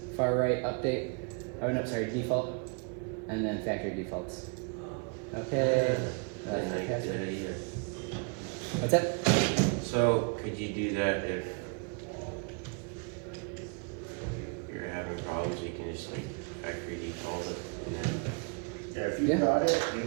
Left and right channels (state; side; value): quieter; left; 34.6 dB